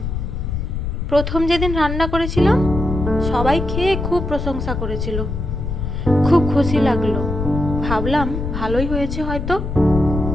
প্রথম যেদিন রান্না করেছিলাম, সবাই খেয়ে খুব প্রশংসা করেছিল। খুব খুশি লাগলো। ভাবলাম ভালোই হয়েছে হয়তো।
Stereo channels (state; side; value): noise; left; rumble, 4 dB below the sound